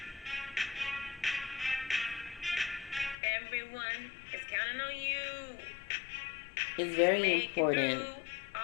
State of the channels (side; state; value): right; drops out; at 3.2 s